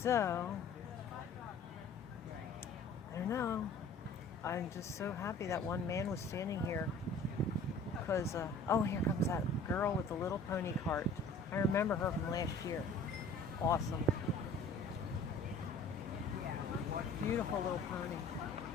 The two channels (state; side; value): quieter; right; 3.2 dB